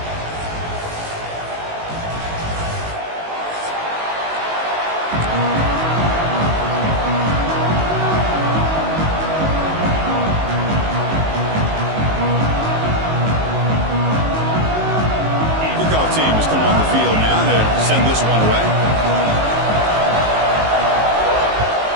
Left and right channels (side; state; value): left; late; 19 ms